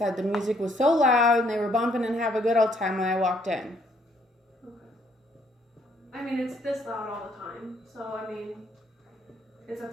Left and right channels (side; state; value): both; normal; correlation 0.67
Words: the music was so loud and they were bumping and have a good old time when I walked in. Okay. I mean, it's this loud all the time, so I mean, it's at